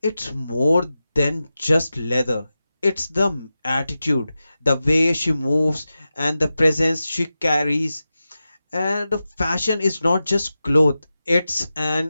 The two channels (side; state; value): both; inverted; correlation -0.93